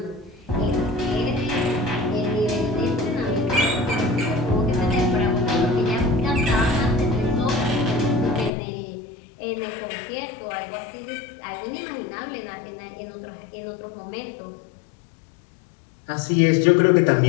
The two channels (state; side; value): drops out; right; at 8.5 s